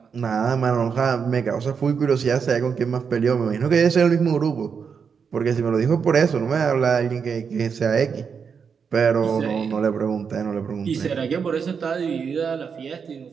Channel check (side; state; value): left; quieter; 6.3 dB